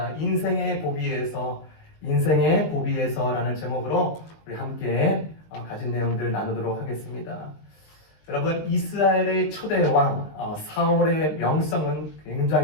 인생의 고비에서라는 제목으로 우리 함께 가진 내용들 나누도록 하겠습니다. 여러분, 이스라엘의 초대 왕 사울의 명성은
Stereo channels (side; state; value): right; late; 20 ms